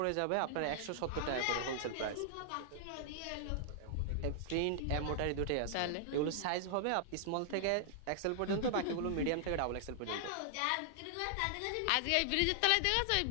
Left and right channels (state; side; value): different; both; correlation -0.01